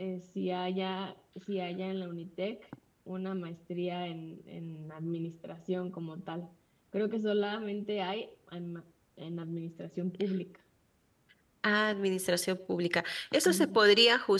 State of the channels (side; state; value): both; identical; correlation 1.00